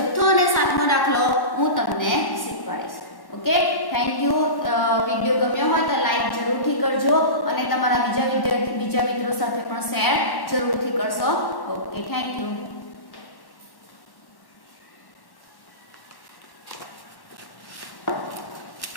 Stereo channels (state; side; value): late; right; 1.1 ms